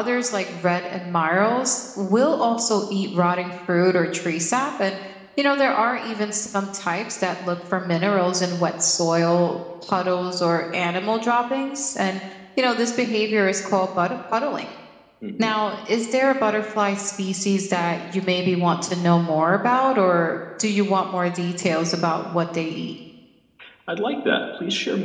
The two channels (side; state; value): both; identical; correlation 1.00